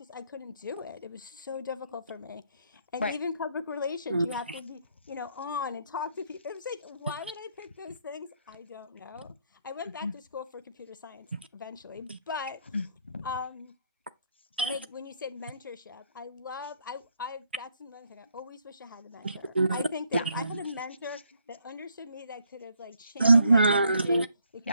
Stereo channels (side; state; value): both; inverted; correlation -0.71